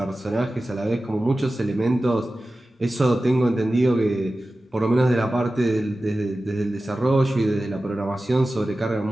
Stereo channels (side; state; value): both; normal; correlation 0.95